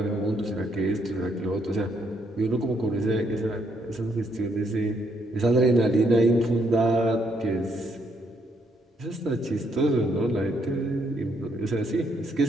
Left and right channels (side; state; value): both; normal; correlation 0.73